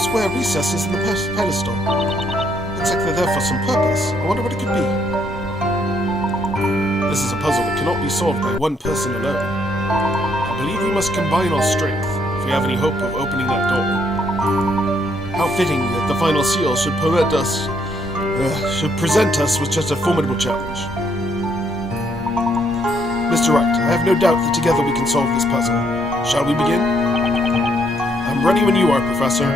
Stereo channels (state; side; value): normal; both; correlation 0.71